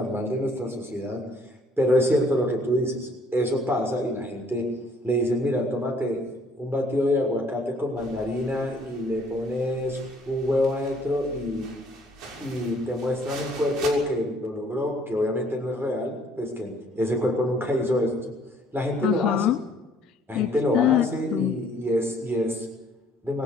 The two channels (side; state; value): both; normal; correlation 0.61